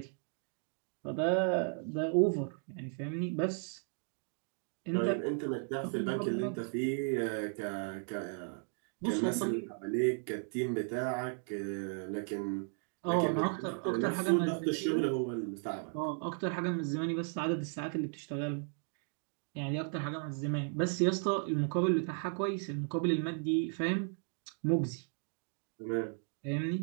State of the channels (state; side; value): silent; left; 54 dB below the other